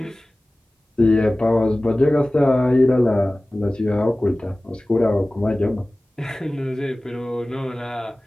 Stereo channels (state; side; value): normal; both; correlation 0.98